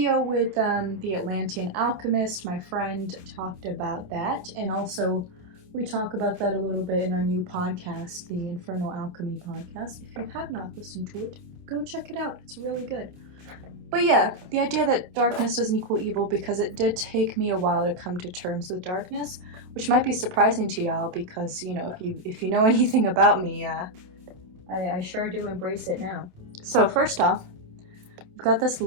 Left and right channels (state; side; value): late; left; 28 ms